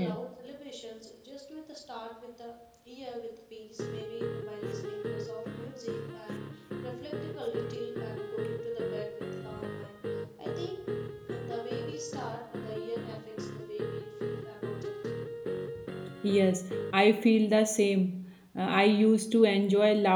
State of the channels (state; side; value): identical; both; correlation 1.00